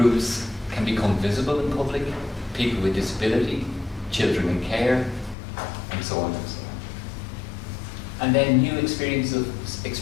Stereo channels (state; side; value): drops out; right; at 5.4 s